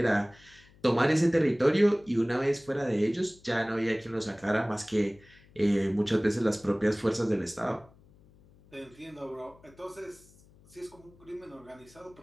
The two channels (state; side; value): noise; left; hum, 27 dB below the sound